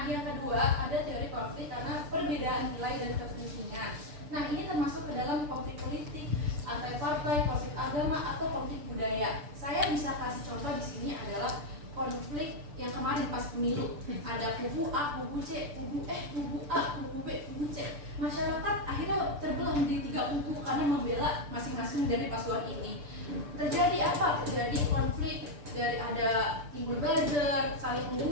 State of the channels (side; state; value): left; late; 6.8 ms